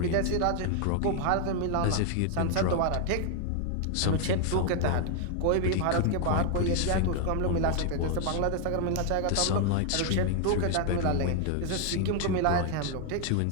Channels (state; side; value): different; both; correlation 0.00